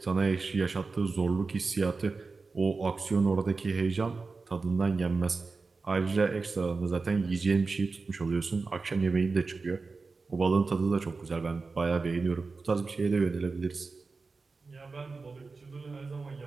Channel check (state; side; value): quieter; left; 4.2 dB